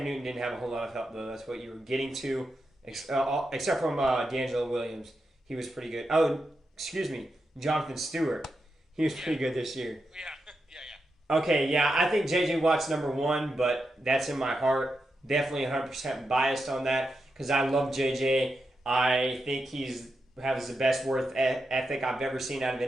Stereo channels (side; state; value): both; normal; correlation 0.86